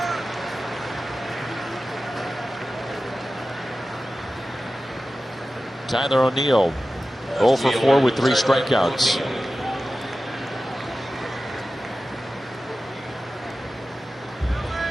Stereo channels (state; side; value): normal; both; correlation 0.95